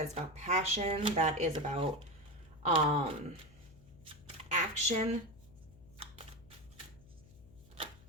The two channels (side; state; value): left; noise; hum, 23 dB below the sound